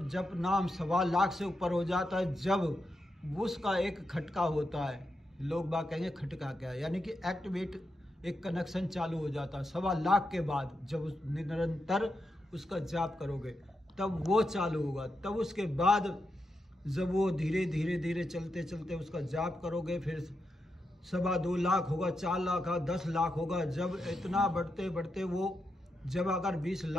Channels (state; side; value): normal; both; correlation 0.86